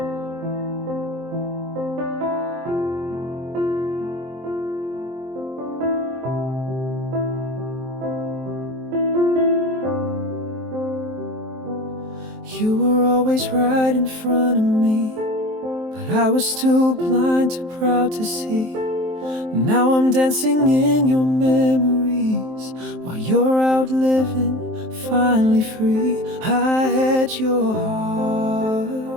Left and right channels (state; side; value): late; left; 23 ms